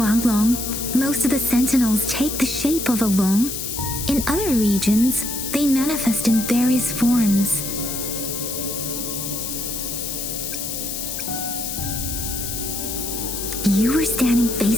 most of the sentinels take the shape of a long. In other regions, they manifest in various forms. You were standing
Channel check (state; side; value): noise; left; hiss, 4 dB below the sound